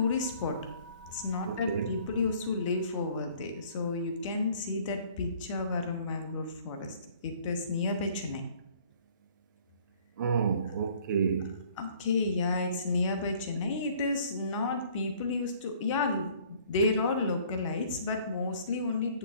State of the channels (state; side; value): inverted; both; correlation -0.56